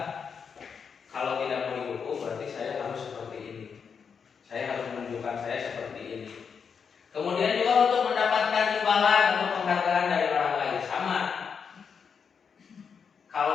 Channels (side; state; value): right; quieter; 6.4 dB